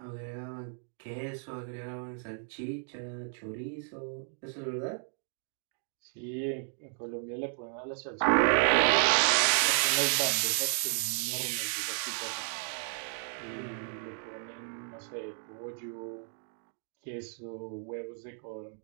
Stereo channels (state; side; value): silent; left; 56 dB below the other